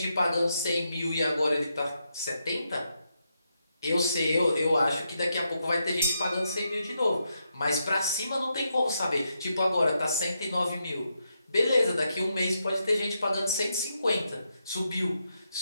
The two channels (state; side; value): inverted; both; correlation -0.82